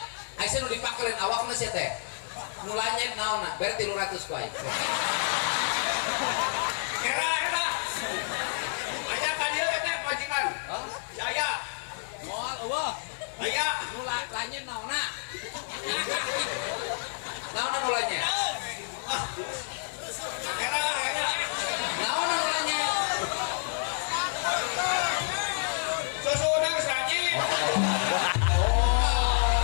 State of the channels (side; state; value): right; silent; digital silence